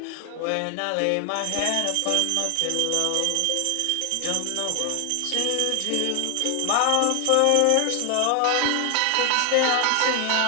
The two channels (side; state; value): both; different; correlation 0.00